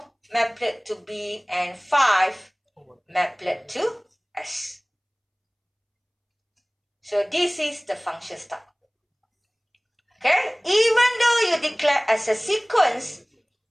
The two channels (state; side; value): identical; both; correlation 1.00